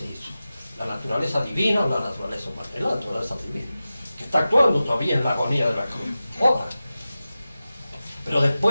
eso? ¿La naturaleza divina o la naturaleza humana? Es la naturaleza divina, que está actuando todavía en la agonía de la cruz. Obra. Pero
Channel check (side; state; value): both; inverted; correlation -0.95